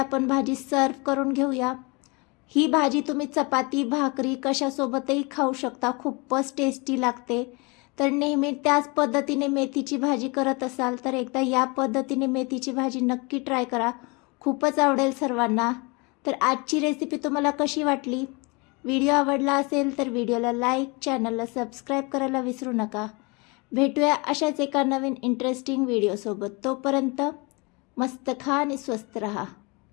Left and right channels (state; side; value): quieter; right; 28.4 dB